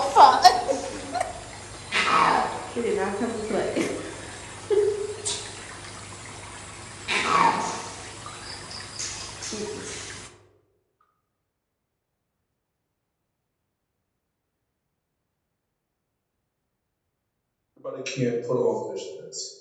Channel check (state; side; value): identical; both; correlation 1.00